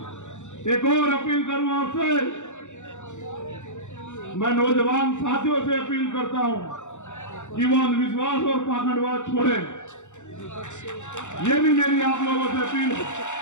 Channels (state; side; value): late; right; 0.84 ms